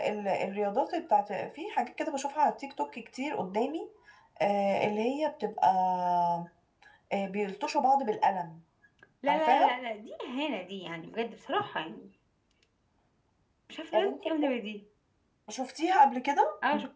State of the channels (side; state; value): both; identical; correlation 1.00